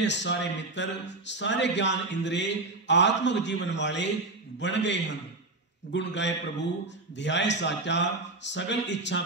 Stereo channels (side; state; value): left; quieter; 3.2 dB